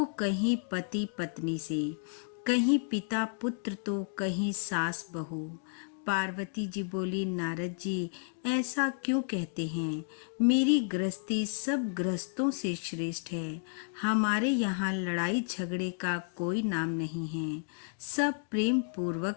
कहीं पति पत्नी से, कहीं पिता पुत्र तो कहीं सास बहू। पार्वती जी बोली, नारद जी, ऐसा क्यों कहते हैं? मेरी गृहस्थी सब गृहस्थों से श्रेष्ठ है। हमारे यहाँ लड़ाई झगड़े का कोई नाम नहीं है, सब प्रेम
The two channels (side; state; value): right; silent; digital silence